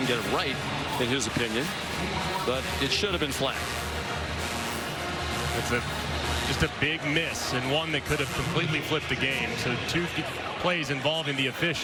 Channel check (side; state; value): both; identical; correlation 1.00